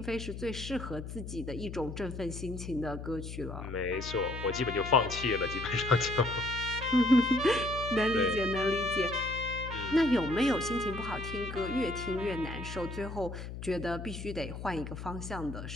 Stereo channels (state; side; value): noise; left; hum, 9 dB below the sound